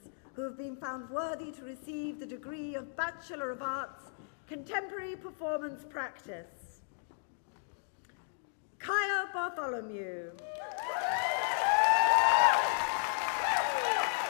who have been found worthy to receive the degree of Bachelor of Arts, Contemporary Performance Practice. Kaya Bartholomew.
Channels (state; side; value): silent; right; digital silence